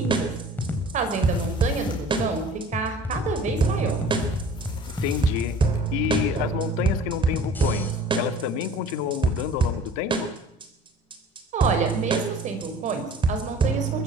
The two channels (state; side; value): normal; both; correlation 0.46